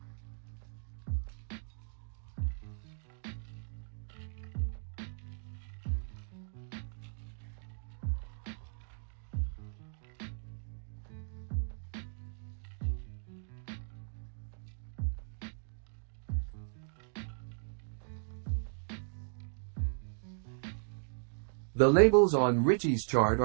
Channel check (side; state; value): left; silent; digital silence